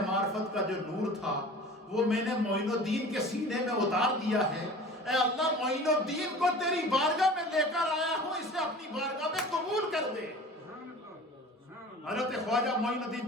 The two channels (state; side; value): normal; both; correlation 0.41